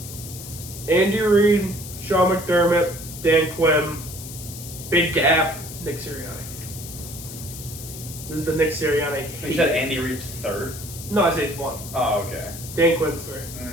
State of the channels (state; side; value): noise; left; hiss, 12 dB below the sound